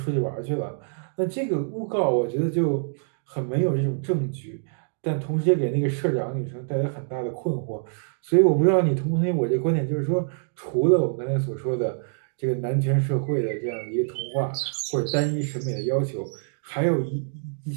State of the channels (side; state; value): left; silent; digital silence